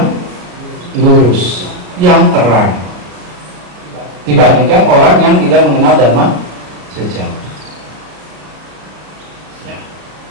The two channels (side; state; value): left; late; 34 ms